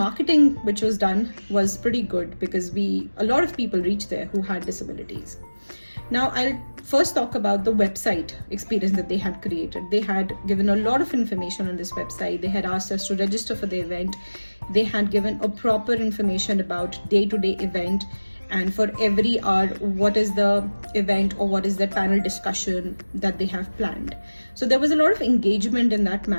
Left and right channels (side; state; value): both; inverted; correlation -1.00